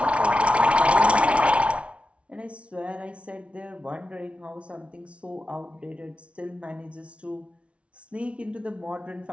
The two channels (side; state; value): left; late; 0.061 ms